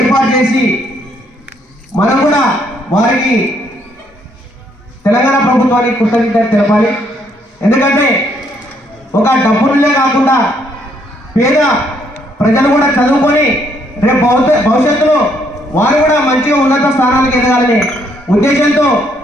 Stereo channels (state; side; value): normal; both; correlation 0.70